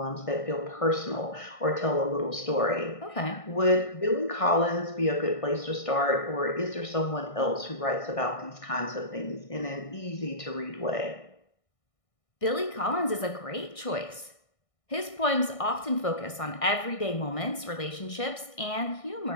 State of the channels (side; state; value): right; late; 1.6 ms